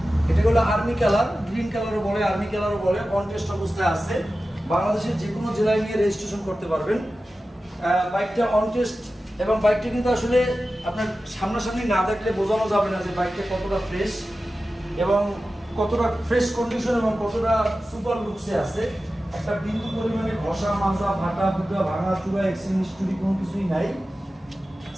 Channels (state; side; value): normal; both; correlation 0.94